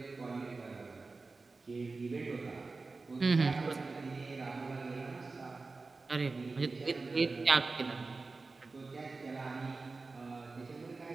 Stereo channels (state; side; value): quieter; left; 3.8 dB